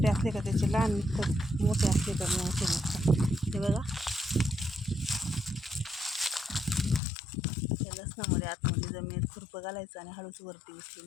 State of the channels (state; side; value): drops out; right; at 7.0 s